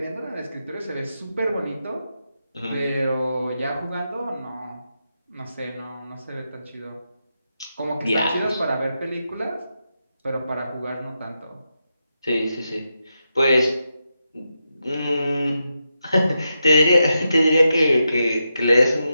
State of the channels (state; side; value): inverted; both; correlation -0.86